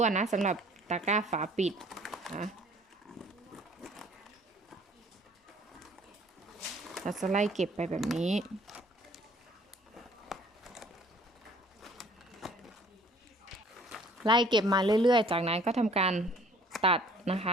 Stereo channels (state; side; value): normal; both; correlation 0.54